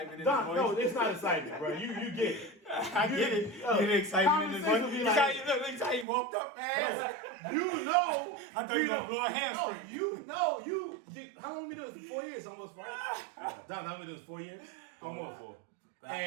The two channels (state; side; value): drops out; left; at 6.1 s